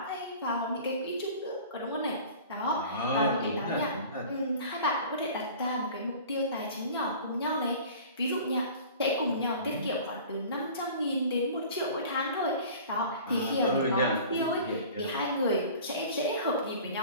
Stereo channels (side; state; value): both; inverted; correlation -0.43